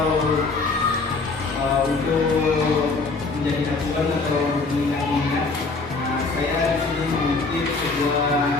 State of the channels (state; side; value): quieter; right; 3.9 dB